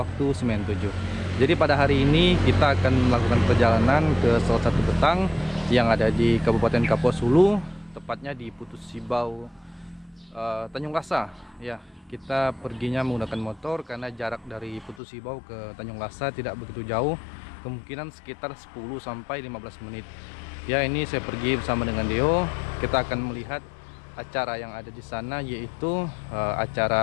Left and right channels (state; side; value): drops out; right; at 15.0 s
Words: Waktu Semen 7. Jadi pada hari ini kita akan melakukan perjalanan ke salah satu betang yang ada di Kabupaten Kapuas Hulu, tepatnya di Putus Sibau, Tanjung Lasa. Ya, kita perginya menggunakan motor karena jarak dari Putus Sibau ke Tanjung Lasa tidak begitu jauh, kemungkinan sekitar 10 sampai 15 menit. Ya, ini saya pergi bersama dengan Deo. Kita akan melihat acara yang ada di sana, yaitu